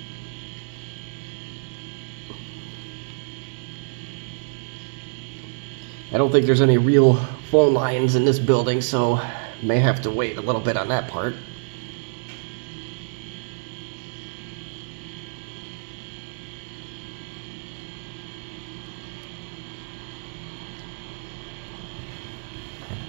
I don't think there's any real phone lines in this building, so may have to wait a little bit on that part.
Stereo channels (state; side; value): silent; left; digital silence